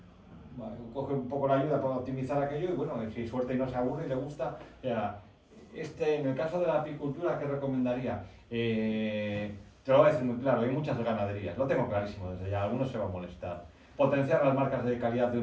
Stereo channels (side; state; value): both; identical; correlation 1.00